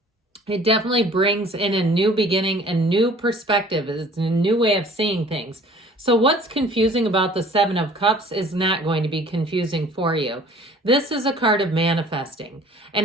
it definitely brings in a new beginning, a new perspective. It's a new way of seeing things. So what's confusing about the Seven of Cups is not going to be confusing for you. This is a card of manifesting.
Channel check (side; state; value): both; normal; correlation 0.51